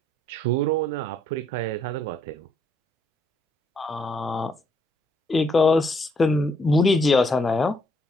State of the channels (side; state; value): both; normal; correlation 0.71